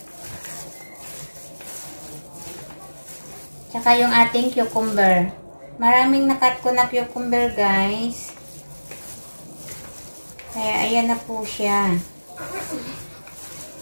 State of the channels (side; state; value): both; inverted; correlation -1.00